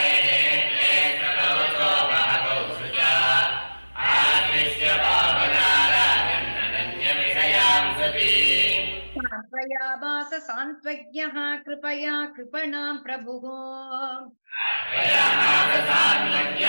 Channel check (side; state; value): both; inverted; correlation -1.00